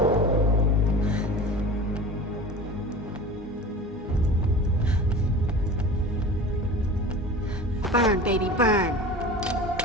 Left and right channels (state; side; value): normal; both; correlation 0.36